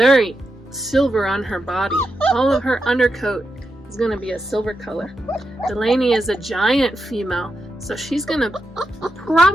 silver on her body. All of her undercoat is going to be a silver color. Delaney is a giant female, so she's going to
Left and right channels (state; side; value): normal; both; correlation 0.87